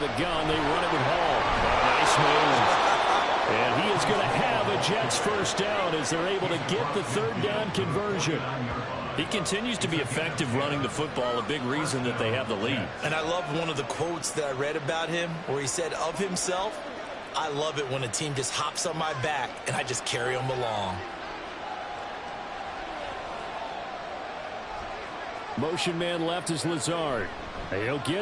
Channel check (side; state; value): both; identical; correlation 1.00